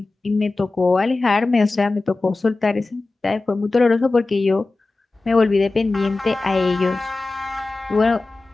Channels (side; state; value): right; quieter; 3.3 dB